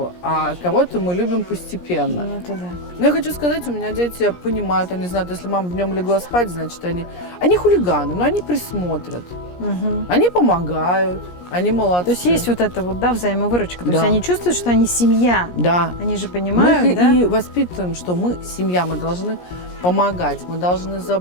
а кого-то мы любим постепенно. Ну, это да. Но я хочу сказать, у меня дети понимают, они знают, если мама днем легла спать, значит, они хулиганы, но они присмотрят, они помогают, они молодцы. То есть есть вот это вот, да, взаимовыручка. То Да. есть они чувствуют, что они семья. Да. Они же Мы понимают, их да? и воспитываем, что мы семья, мы должны помогать, мы должны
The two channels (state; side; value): late; right; 17 ms